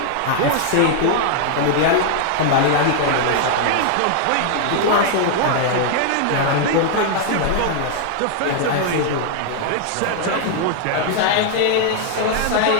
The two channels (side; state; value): both; different; correlation 0.00